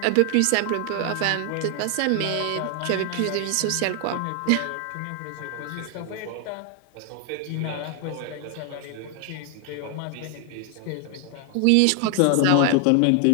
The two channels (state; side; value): different; both; correlation 0.00